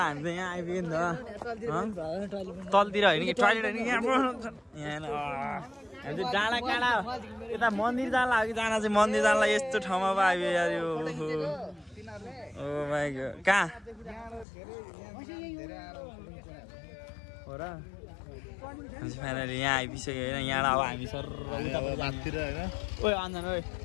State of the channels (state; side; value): drops out; right; at 14.5 s